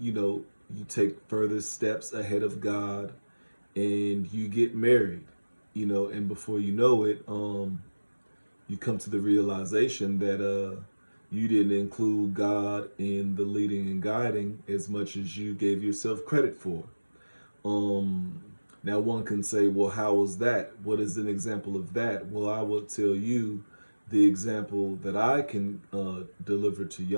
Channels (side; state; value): both; inverted; correlation -1.00